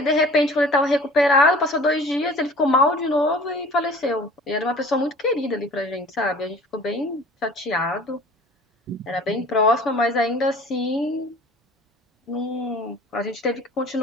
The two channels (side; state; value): both; normal; correlation 0.46